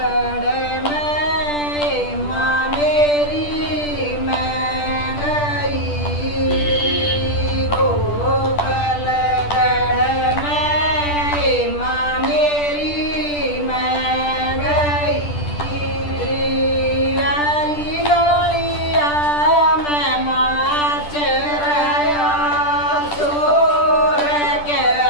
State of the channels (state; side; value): late; right; 10 ms